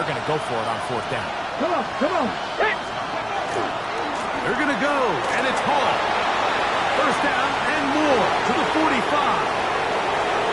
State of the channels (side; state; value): both; identical; correlation 1.00